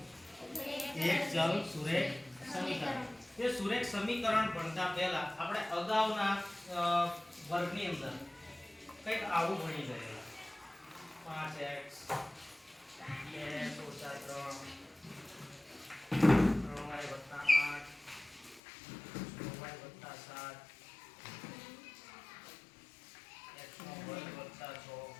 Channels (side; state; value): right; drops out; at 18.6 s